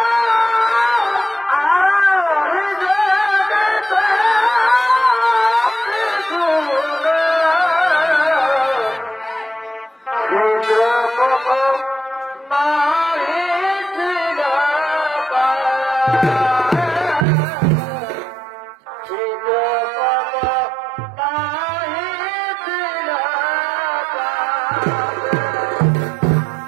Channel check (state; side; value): drops out; left; at 17.2 s